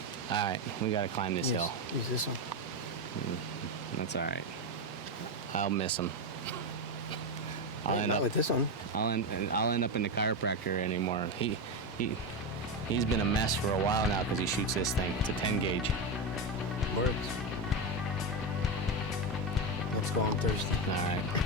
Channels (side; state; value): both; normal; correlation 0.12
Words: right, we got to climb this hill. Use this one. That's all right. I'll miss them. I'll end up with this one. I'll end up in the chiropractor anymore. He's been a mess for a while now because he shoots this thing. It's a 10 gauge. Works. Let's go on Thursday. All right,